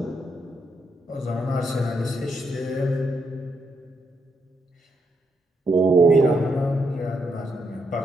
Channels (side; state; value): both; normal; correlation 0.79